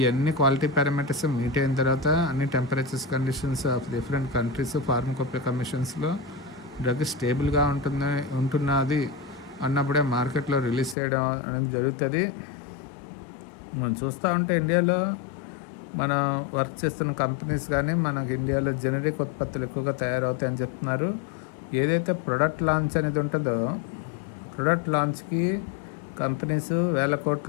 క్వాలిటీ పారామీటర్స్ మీట్ అయిన తర్వాత అన్ని temperatures conditions of different countries pharmacopoeia కమిషన్స్లో డ్రగ్ స్టేబుల్గా ఉంటున్నది అన్నప్పుడే మార్కెట్లో రిలీజ్ చేయడం అనేది జరుగుతుంది. మనం చూస్తూ ఉంటే ఇండియాలో మనం వర్క్ చేస్తున్న కంపెనీస్ కానీ మనకి ఇండియాలో జనరిక్ ఉత్పత్తులు ఎక్కువగా తయారవుతాయని చెప్తున్నారు. ఏదైతే ప్రొడక్ట్ లాంచ్ అనేది ఉంటుందో, ప్రొడక్ట్ లాంచ్కి కంపెనీస్ వేల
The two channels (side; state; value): right; drops out; at 11.0 s